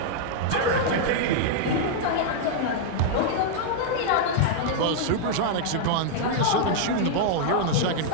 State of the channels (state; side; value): different; both; correlation -0.01